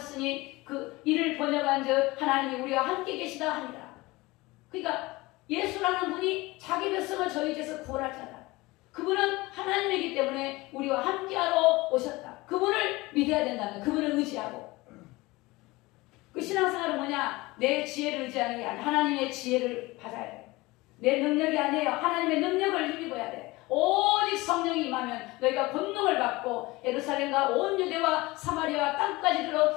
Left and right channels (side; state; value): right; quieter; 21.5 dB